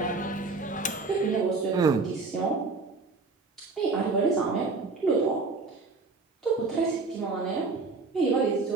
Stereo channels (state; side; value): quieter; left; 3.9 dB